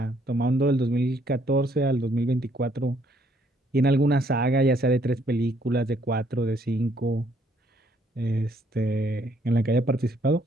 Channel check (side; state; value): both; normal; correlation 0.68